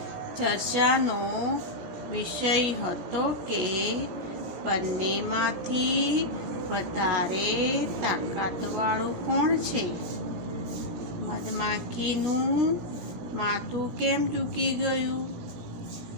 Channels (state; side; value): late; left; 17 ms